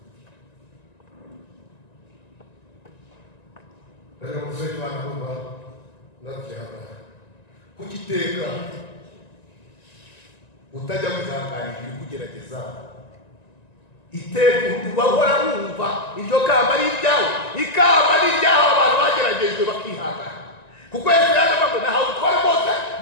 bari namusenga Imana numva ndabyihangana kugiteka utajya wihanganira ibiri kugerageza iteka ubahora wumva iryo kamba ari iryawe ikamba ari iryaho abantu bageragejwe bakihangana kuko Yesu yavuga ngo nahawe utware bose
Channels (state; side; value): late; right; 1.9 ms